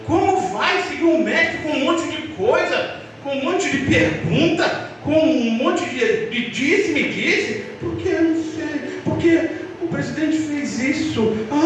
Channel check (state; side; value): identical; both; correlation 1.00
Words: Como vai seguir um mestre com um monte de coisa, com um monte de pergunta, com um monte de disse-me-disse? Porque eu não sei, porque o presidente fez isso,